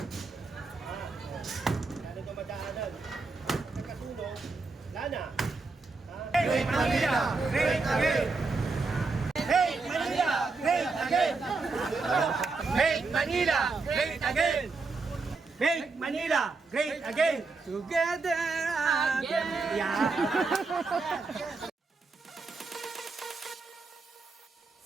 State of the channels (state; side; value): quieter; left; 4.0 dB